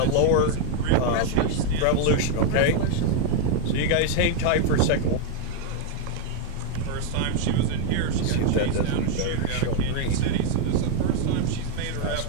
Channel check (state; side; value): different; both; correlation 0.01